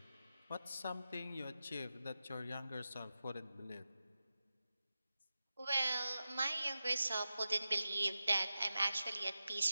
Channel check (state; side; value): inverted; both; correlation -0.93